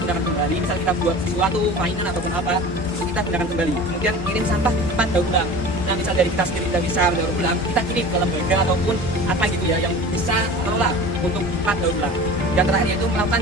kembali. Misal kita buat sesuatu mainan ataupun apa, itu kita gunakan kembali. Kemudian kirim sampah ke tempat daur ulang. Nah, misal dari kita sendiri tidak bisa daur ulang, kita kirim ke lembaga ataupun apa gitu ya yang bisa mengelola untuk tempat daur ulang. Yang terakhir yaitu melakukan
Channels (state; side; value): normal; both; correlation 0.37